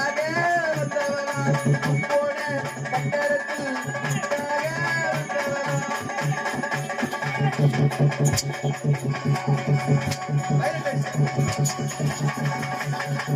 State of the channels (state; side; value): identical; both; correlation 1.00